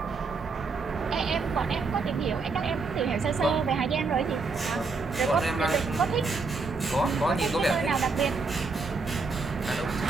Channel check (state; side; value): quieter; left; 4.2 dB